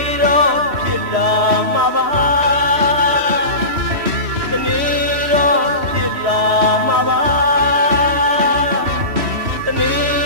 တော့ဖြစ်လာမှာပါတနေ့တော့ဖြစ်လာမှာပါတနေ့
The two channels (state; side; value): late; left; 3.1 ms